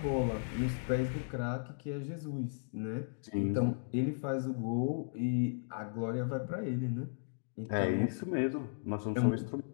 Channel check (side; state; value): right; silent; digital silence